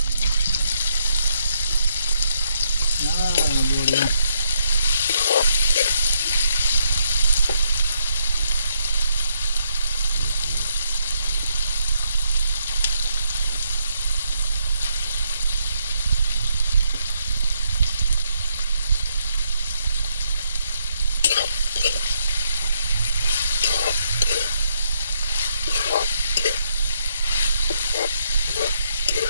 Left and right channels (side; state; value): both; inverted; correlation -0.75